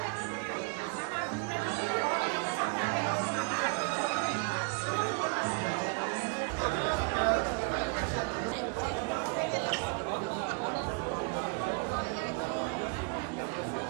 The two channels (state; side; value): quieter; left; 34.8 dB